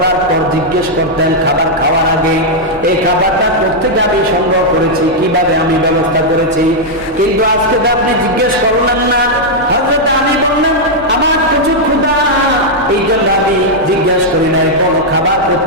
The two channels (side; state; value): both; normal; correlation -0.04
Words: পর জিজ্ঞেস করতেন খাবার খাওয়ার আগে, এই খাবারটা কোত্থেকে আমি সংগ্রহ করেছি, কিভাবে আমি ব্যবস্থা করেছি, কিন্তু আজকে তো আপনি জিজ্ঞেস করলেন না। হযরত আলী বললেন, আমার প্রচুর ক্ষুধা, এই জন্য আমি জিজ্ঞেস করি নাই কোন খাবার